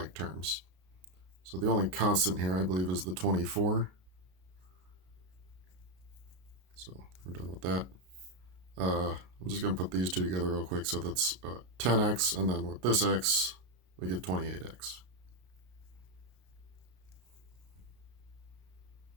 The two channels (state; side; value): late; left; 33 ms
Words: terms. So the only constant here, I believe, is the 24. So we're done with that. I'm just going to put these two together real quick. So that's 10x, and then with this x, we get 28x.